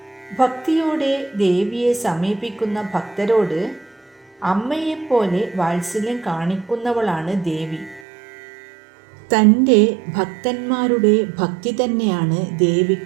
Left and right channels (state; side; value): drops out; left; at 8.1 s